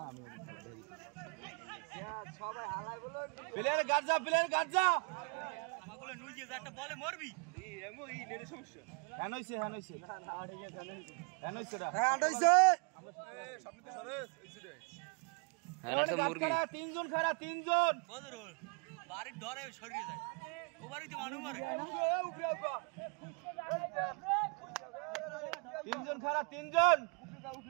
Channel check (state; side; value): quieter; left; 39.2 dB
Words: প্লেয়ার গার্ড যা, প্লেয়ার গার্ড যা। আমাগুলো নুই যে একটা বলে মরবি। এমো ই নেরে সমস্যা। হ্যাঁ হইছে, হ্যাঁ হইছে। হ্যাঁ হইছে রা। হ্যাঁ হইছে। এই সামনে তো সরে এইছে রে। হ্যাঁ না তো মুরগি। তিনজন খাড়া, তিনজন। কদর বাড়ির ধরে সরিয়ে যায়। ও বাড়িতে মানুষ মারে। তিনজন খাড়া, তিনজন।